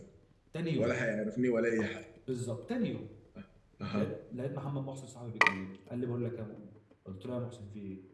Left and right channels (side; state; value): both; identical; correlation 1.00